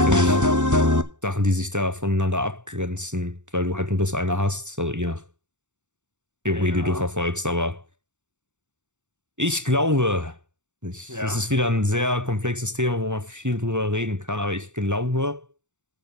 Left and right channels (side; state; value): left; late; 0.84 ms